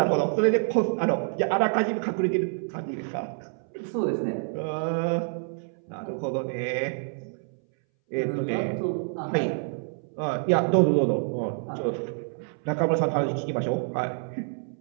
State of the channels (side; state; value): left; silent; 60 dB below the other